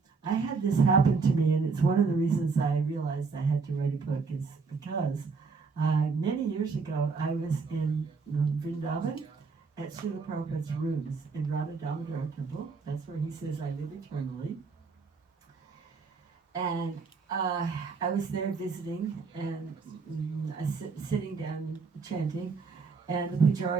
I had this happen to me, and it's one of the reasons I realized I had to write a book, is because many years ago I was in Vrindavan at Srila Prabhupada's rooms in Radha Damodar Temple. That's where he says, "I live eternally." And I was there visiting, and sitting down chanting, and the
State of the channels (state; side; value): quieter; left; 4.8 dB